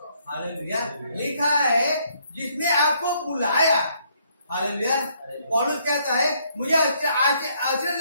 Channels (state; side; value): inverted; both; correlation -0.69